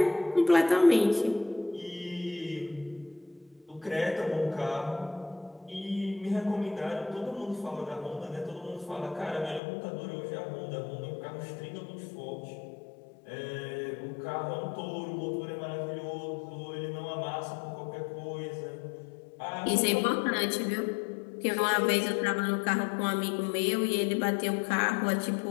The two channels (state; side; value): drops out; right; at 9.6 s